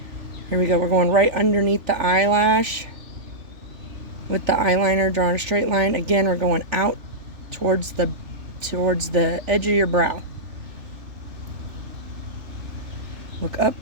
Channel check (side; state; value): left; late; 3.4 ms